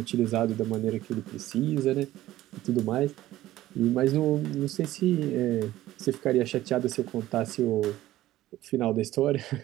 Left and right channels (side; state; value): left; quieter; 15.0 dB